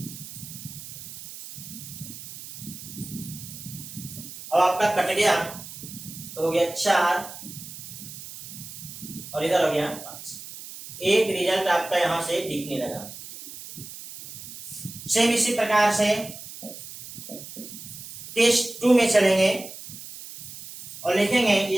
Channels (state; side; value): noise; right; hiss, 13 dB below the sound